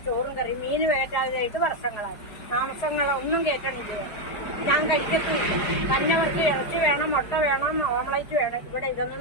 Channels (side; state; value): right; late; 4.8 ms